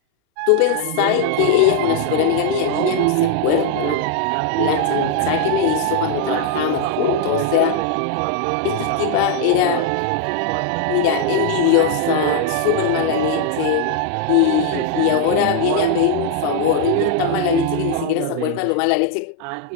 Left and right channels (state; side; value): different; both; correlation 0.00